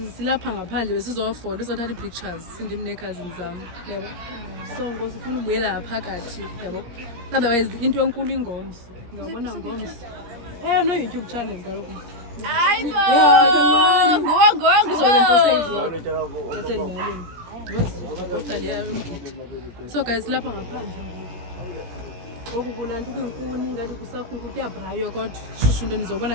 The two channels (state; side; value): late; left; 17 ms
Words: silapha ngaphandle besizofola uzothatha pictures ndim ne cousins zami yabo. So ngosifuna ubuyela phakathi yabo. Otherwise into enkulu ingomso. Ngabona ngomso. No YouTube channel kaloku. Hayibo. Ngo. Ngizokwenza ivlog. Bese limalini. Ngoziposta liya emgidi. So guys lapha ngaphandle. Ngoku kulantu kwinkuni ngathi kusakhuku kuyabrayo kodwa shushu into nizobona